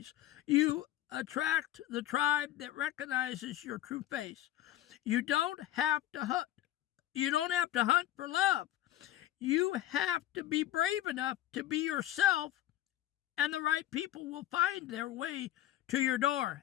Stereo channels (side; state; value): right; quieter; 13.5 dB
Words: You attract the tribe that recognizes your true face. You don't have to hunt. You don't have to hunt for love. You have to be brave enough to be yourself, and the right people will find their way to your door.